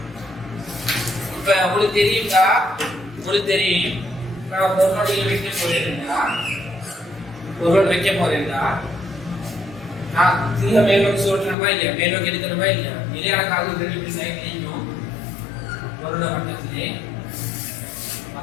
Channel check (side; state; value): right; drops out; at 11.6 s